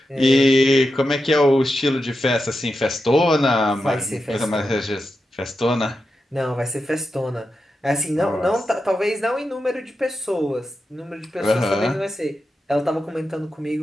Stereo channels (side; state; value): both; normal; correlation 0.89